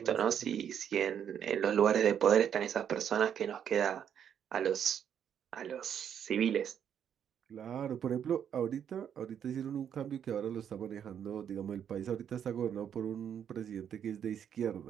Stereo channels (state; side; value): quieter; left; 8.7 dB